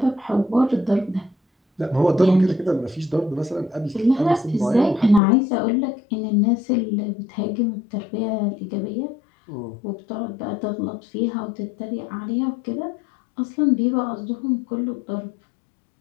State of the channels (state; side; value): drops out; right; at 5.2 s